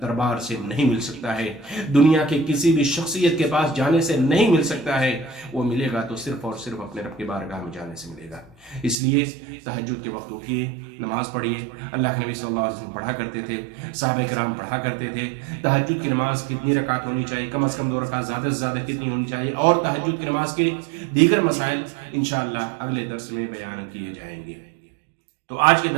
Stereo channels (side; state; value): left; drops out; at 9.0 s